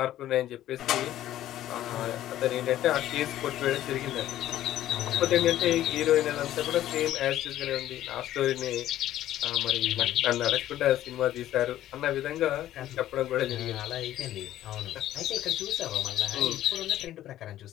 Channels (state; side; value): quieter; right; 13.1 dB